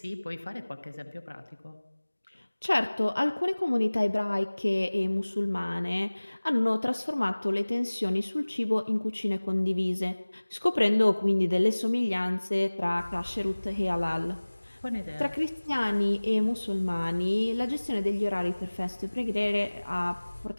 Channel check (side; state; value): both; inverted; correlation -1.00